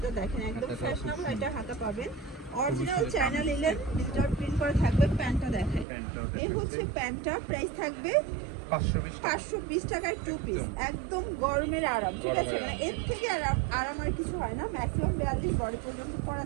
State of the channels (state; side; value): drops out; left; at 5.9 s